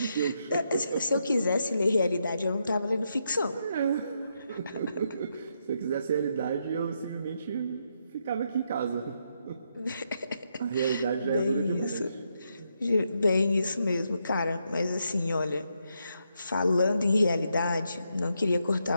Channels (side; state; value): both; inverted; correlation -0.80